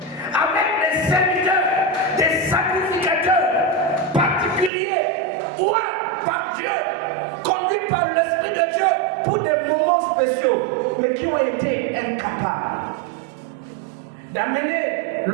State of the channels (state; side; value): drops out; left; at 4.7 s